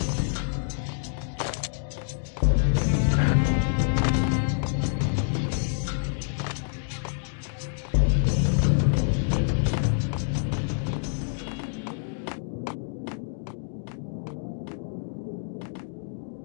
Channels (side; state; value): right; silent; 60 dB below the other